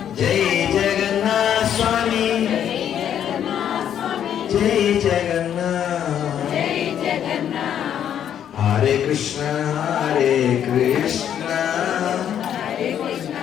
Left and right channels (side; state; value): right; quieter; 9.6 dB